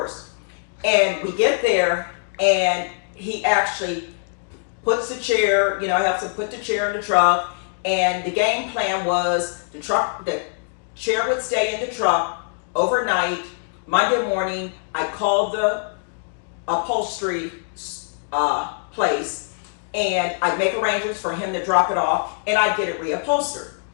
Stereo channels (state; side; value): silent; right; digital silence